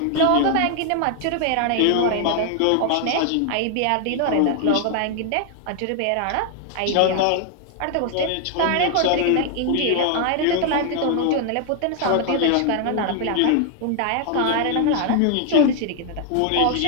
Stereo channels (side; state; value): both; different; correlation 0.00